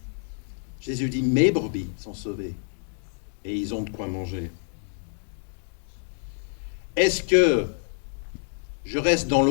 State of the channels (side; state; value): right; silent; 60 dB below the other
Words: Jésus dit, mes brebis sont sauvées et ils ont de quoi manger. Est-ce que je reste dans